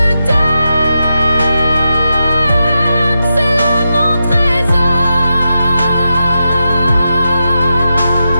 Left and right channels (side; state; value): both; inverted; correlation -0.88